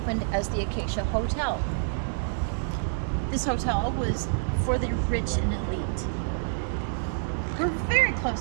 as the Acacia Hotel. This hotel was for the rich and elite. We're very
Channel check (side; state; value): left; silent; digital silence